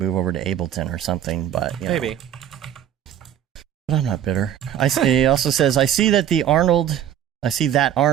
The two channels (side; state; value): left; quieter; 10.3 dB